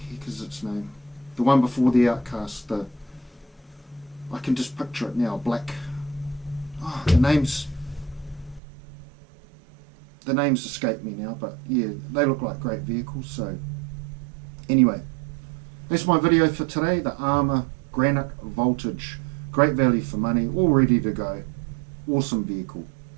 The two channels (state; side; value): drops out; left; at 8.6 s